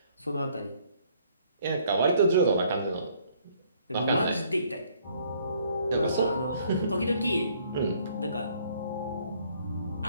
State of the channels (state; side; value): inverted; both; correlation -0.63